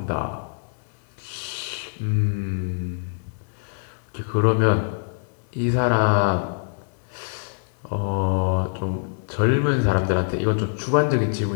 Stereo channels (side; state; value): right; silent; digital silence